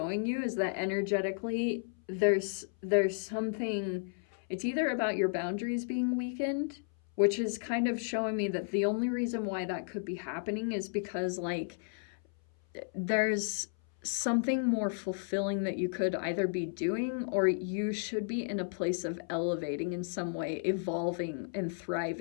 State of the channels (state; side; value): silent; right; 56 dB below the other